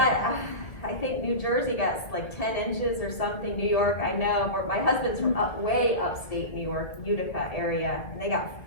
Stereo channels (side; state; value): right; late; 2.1 ms